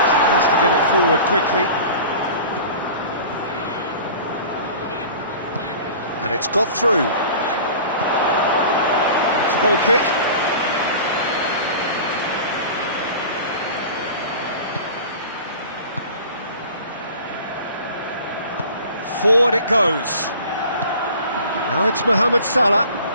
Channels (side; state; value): both; inverted; correlation -0.41